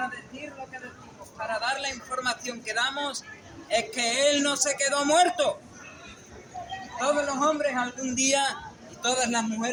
decir lo que decimos, para dar la información que damos, es que Él no se quedó muerto. Todos los hombres algún día, y todas las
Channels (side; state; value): both; identical; correlation 1.00